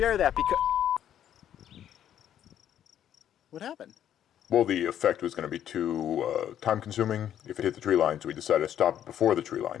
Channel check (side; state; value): right; quieter; 10.4 dB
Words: that because... What happened? Well, the effect was going to be too time-consuming if it hit the tree line, so we decided to stop it before the tree